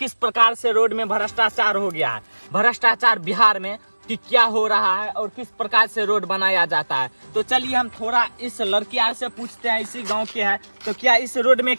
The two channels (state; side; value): inverted; both; correlation -1.00